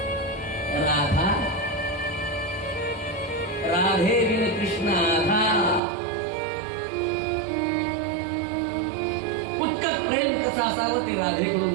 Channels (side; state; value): left; drops out; at 5.8 s